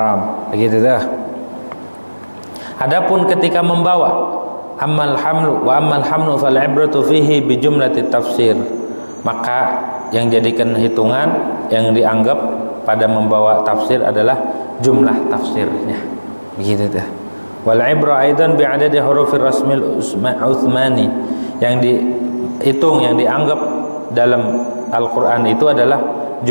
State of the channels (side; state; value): both; inverted; correlation -1.00